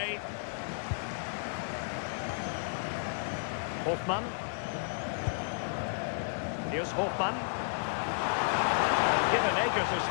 Hofmann. Here's Hofmann. And given acres of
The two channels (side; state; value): right; silent; digital silence